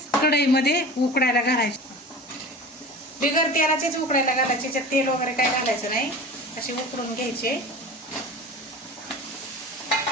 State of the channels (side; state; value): both; normal; correlation 0.36